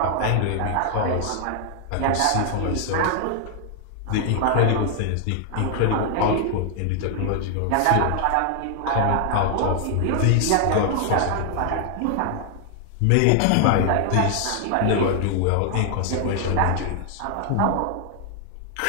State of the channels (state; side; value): different; both; correlation 0.00